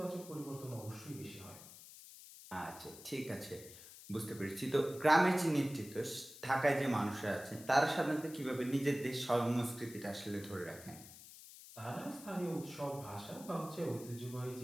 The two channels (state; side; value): noise; left; hiss, 16 dB below the sound